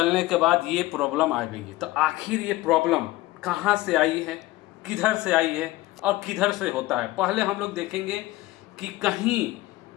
के बाद ये प्रॉब्लम आ गई। तो आखिर ये प्रॉब्लम कहाँ से आई है, किधर से आई है और किधर से होता है, पहले हम लोग देखेंगे कि कहीं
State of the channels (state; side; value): quieter; right; 18.0 dB